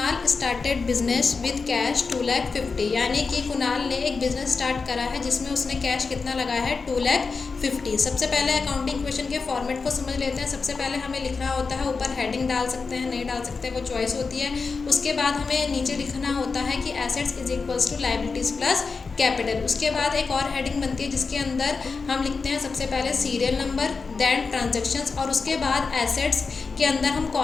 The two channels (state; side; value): quieter; right; 4.6 dB